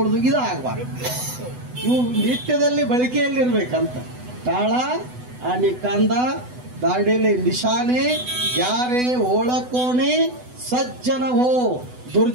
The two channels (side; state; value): left; late; 8.0 ms